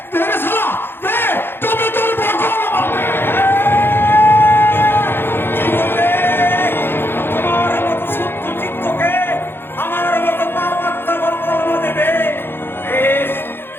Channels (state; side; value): late; right; 0.10 ms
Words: দে রে শালা দে তবে তোর বকল জীবনে তোমার মতো শুদ্ধ চিত্তকে আমার মতো পাপাত্মা কলমা দেবে। বেশ,